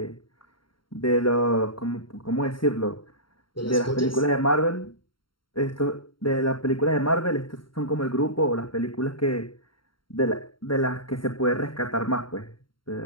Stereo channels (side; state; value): right; late; 0.73 ms